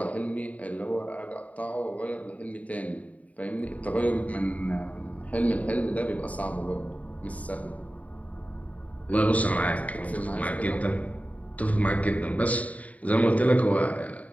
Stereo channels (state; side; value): late; right; 0.070 ms